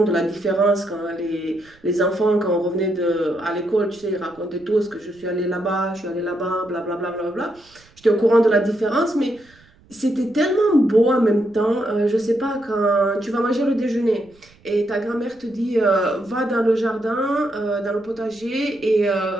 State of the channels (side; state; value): right; noise; rumble, 29 dB below the sound